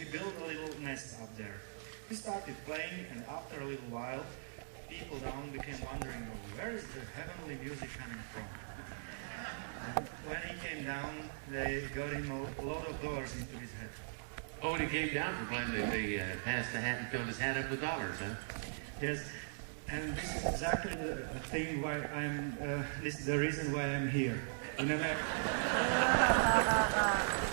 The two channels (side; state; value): left; silent; digital silence